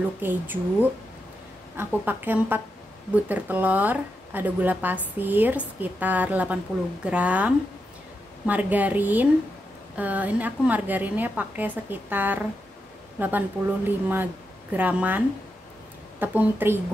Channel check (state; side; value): normal; both; correlation 0.86